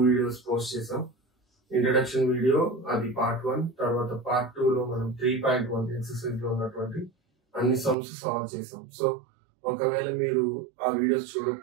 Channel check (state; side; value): drops out; left; at 8.0 s